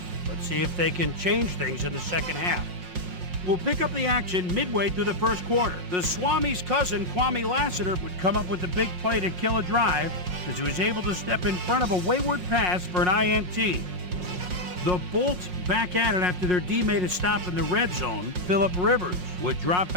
Let's see if they can change things in the second half. We'll pick up the action midway through the first quarter. The Swami's cousin, Kwame Lassiter, would come up with a big play to kill a drive as he was able to step in front of a wayward pass for an INT. The Bolts back at it after their D made a stop in the red zone. Phillip Rivers would drop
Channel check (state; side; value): late; left; 5.5 ms